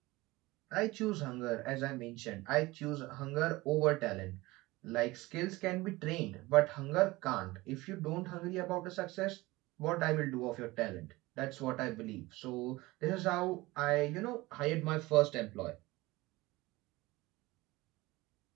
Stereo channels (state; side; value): quieter; left; 20.6 dB